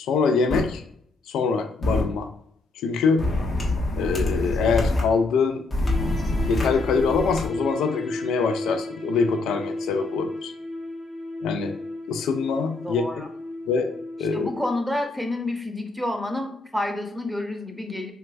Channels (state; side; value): quieter; right; 3.5 dB